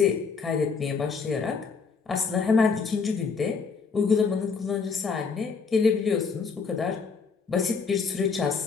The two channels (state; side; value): quieter; right; 5.2 dB